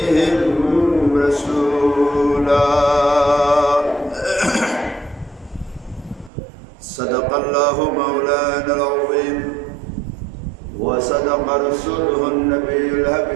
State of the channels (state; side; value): drops out; left; at 6.3 s